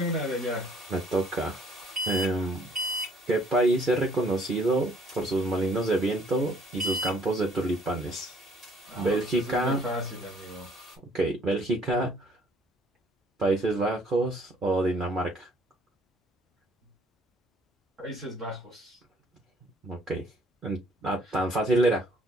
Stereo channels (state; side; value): normal; both; correlation 0.60